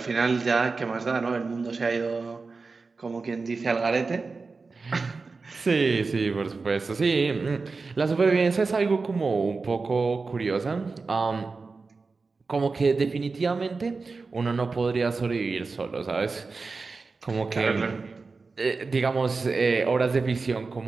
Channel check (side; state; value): left; quieter; 4.2 dB